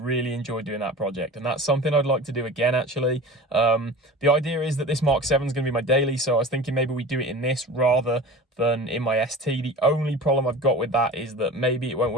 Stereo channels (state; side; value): normal; both; correlation 0.36